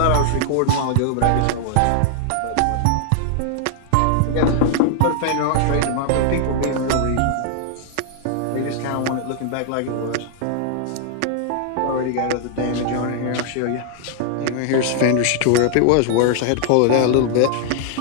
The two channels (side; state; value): both; different; correlation 0.00